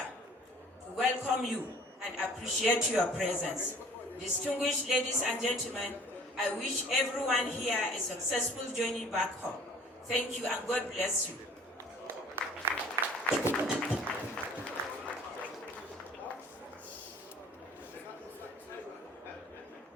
to welcome you and appreciate your presence. Distinguished ladies and gentlemen, I wish everyone here a successful journey back home. Thank you and God bless you.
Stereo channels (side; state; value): both; normal; correlation 0.50